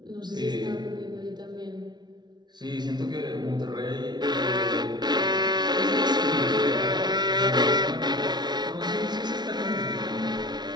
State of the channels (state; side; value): late; left; 0.20 ms